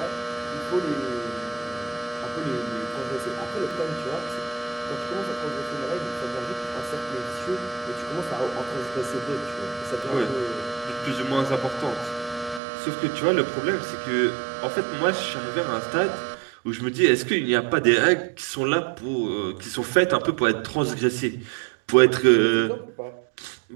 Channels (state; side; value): drops out; left; at 12.6 s